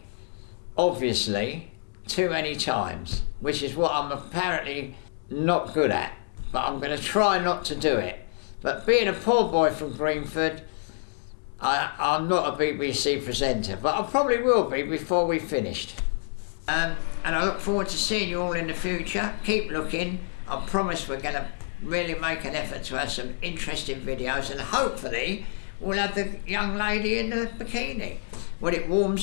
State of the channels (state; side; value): silent; right; digital silence